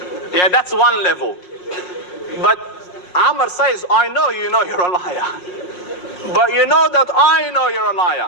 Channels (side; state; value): right; late; 5.5 ms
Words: Yeah, that's one level. But Amr says, I know you know you're a liar. But you know that I know you're a